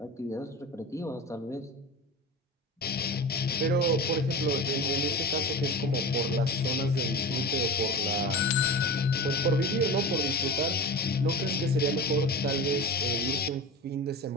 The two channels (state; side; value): normal; both; correlation 0.30